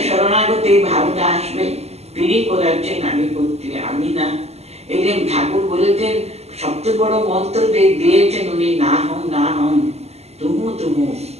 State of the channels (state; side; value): late; left; 0.31 ms